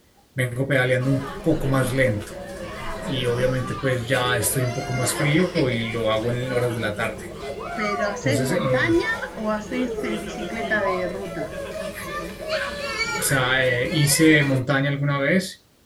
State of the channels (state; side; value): identical; both; correlation 1.00